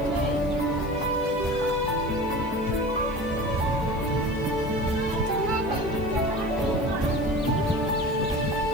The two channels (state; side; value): noise; left; hiss, 26 dB below the sound